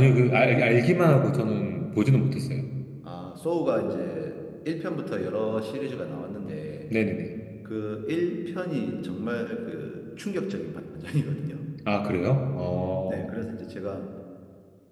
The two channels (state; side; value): identical; both; correlation 1.00